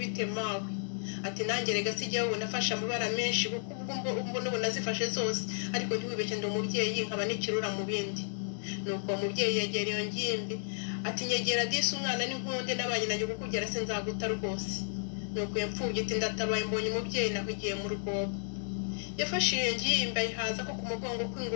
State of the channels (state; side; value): silent; right; digital silence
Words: bite mawe? Ati nanjye rega sijya wowe nafashe amabara menshi kuko ubwo n'ubu nazifashe zose, ariko ntiwibeshye ndi umubyeyi nkaba n'ikirura mu bindi. Nuko uwo mubyeyi yegera iyo ngimbi ati nyegera disi umwana n'inkunde n'abanye nanjye kukugera sinzaguta rwose. Nuko iyo mfubyi iti ndatabaye mbonye umubyeyi nahugiye mu rwobo. Yafashe iyo ngimbi ayihaza ko ku mugongo